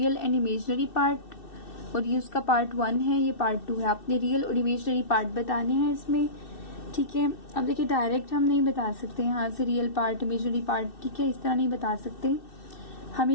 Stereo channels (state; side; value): late; right; 2.6 ms